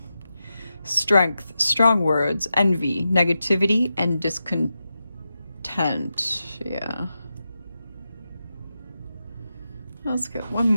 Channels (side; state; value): both; inverted; correlation -0.90